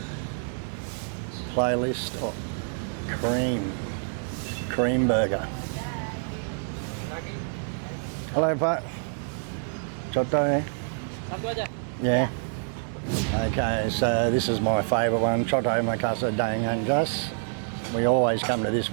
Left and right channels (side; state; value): left; silent; 59 dB below the other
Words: Playlist of cream burger. Hello Pak. Coto eh? Yeah. Okay, so this is my favourite one, Choto Makassar Daeng Jas. We always come to this